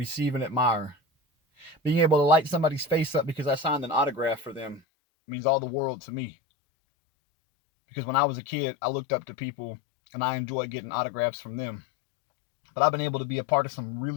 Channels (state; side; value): drops out; right; at 4.8 s